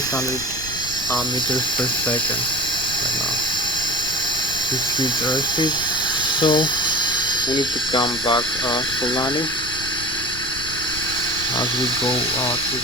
meters per second right now. This huge airspeed, so we need to come back for landing as we go to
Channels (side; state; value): left; noise; rumble, 13 dB below the sound